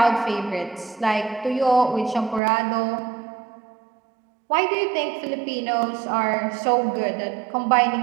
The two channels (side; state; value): left; drops out; at 2.4 s